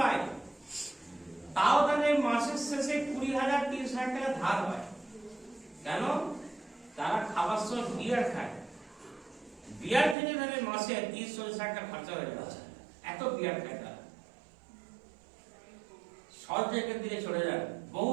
তাও তাদের মাসের শেষে 20,000-30,000 টাকা ধার হয়। কেন? তারা খাবার সময় বিয়ার খায়, বিয়ার থেকে তাদের মাসে 30-40 টাকা খরচা হয়ে যাচ্ছে, এত বিয়ার খায় তারা। সব জায়গার দিকে চলে যান, বহু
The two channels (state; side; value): drops out; left; at 10.2 s